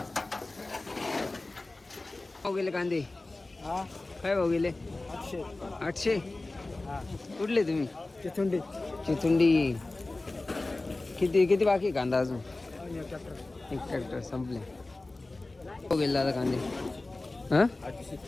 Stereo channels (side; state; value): right; quieter; 3.1 dB